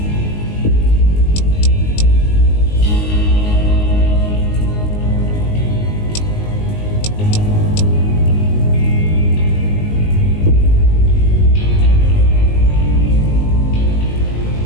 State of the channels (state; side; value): late; right; 19 ms